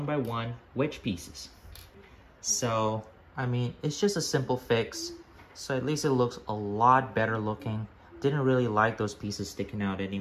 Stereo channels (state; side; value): identical; both; correlation 1.00